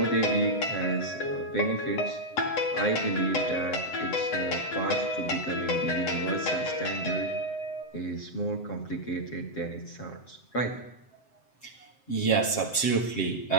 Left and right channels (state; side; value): late; right; 7.7 ms